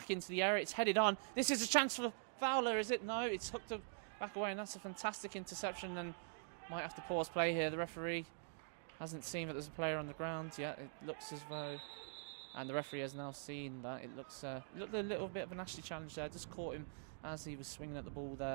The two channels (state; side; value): silent; left; digital silence